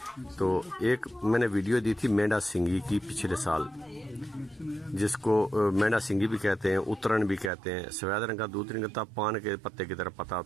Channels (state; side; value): drops out; left; at 7.5 s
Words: تو ایک میں نے ویڈیو دی تھی مینڈا سنگھی کی پچھلے سال، جس کو مینڈا سنگھی بھی کہتے ہیں، اترن بھی کہتے ہیں، سفید رنگ کا دودھ نہیں کرتا، پان کے پتے کی طرح پتا